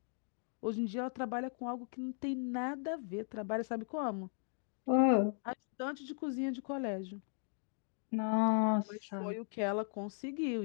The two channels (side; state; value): right; silent; 53 dB below the other